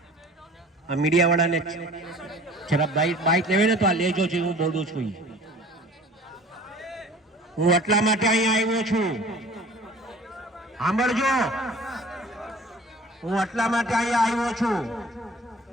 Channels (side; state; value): both; normal; correlation 0.47